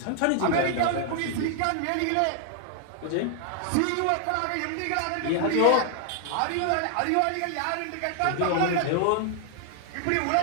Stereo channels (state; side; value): different; both; correlation -0.01